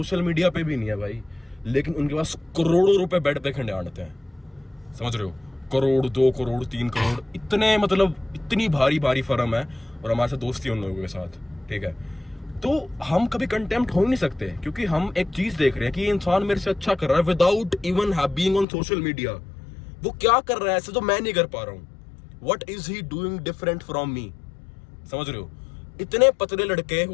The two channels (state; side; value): drops out; right; at 18.7 s